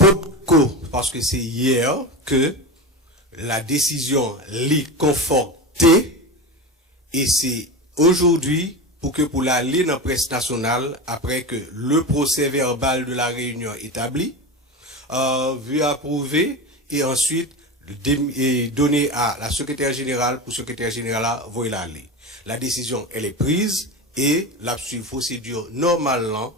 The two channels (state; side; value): normal; both; correlation 0.24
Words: parce que c'est hier que la décision l'est confortée et c'est aujourd'hui pour l'aller dans la presse nationale après que le procès verbal de la réunion établi, vu approuver et ensuite donné à la secrétaire générale pour secrétaire générale voyer l'aller. La décision elle est prise et la procédure normalement